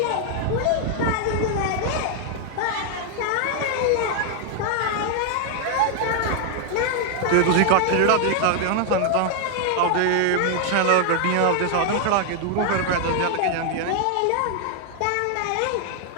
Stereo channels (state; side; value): different; both; correlation 0.00